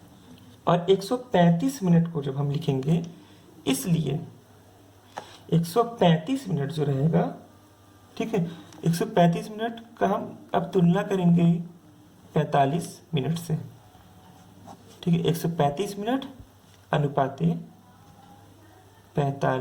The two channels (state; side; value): identical; both; correlation 1.00